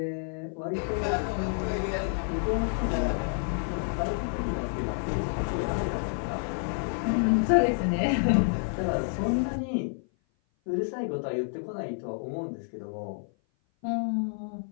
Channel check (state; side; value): silent; right; 56 dB below the other